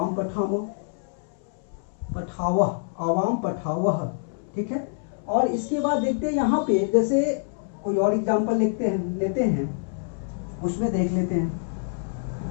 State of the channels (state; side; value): silent; right; 61 dB below the other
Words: पठामा, पठावा, अवाम पठावह। ठीक है, और इसके बाद देखते हैं यहाँ पे, जैसे कोई और एग्जाम्पल लेते हैं, उसमें देख लेते हैं।